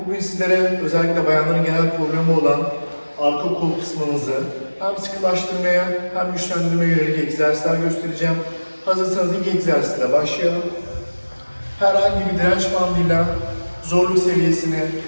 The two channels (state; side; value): inverted; both; correlation -1.00